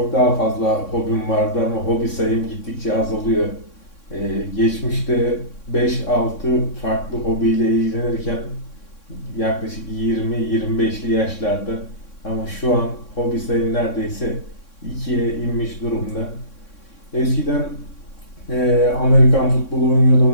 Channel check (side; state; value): right; late; 3.6 ms